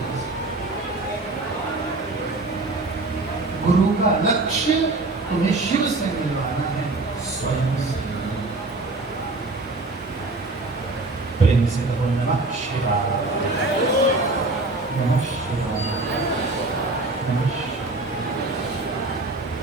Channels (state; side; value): quieter; left; 3.1 dB